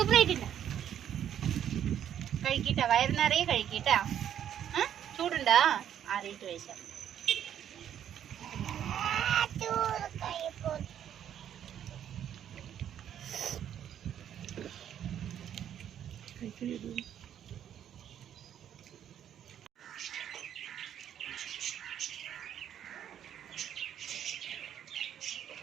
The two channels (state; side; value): quieter; left; 9.9 dB